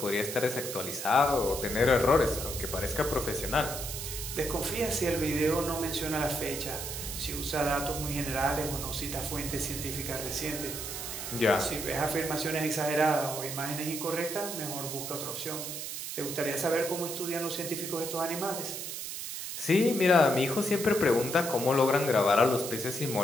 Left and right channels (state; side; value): noise; right; hiss, 6 dB below the sound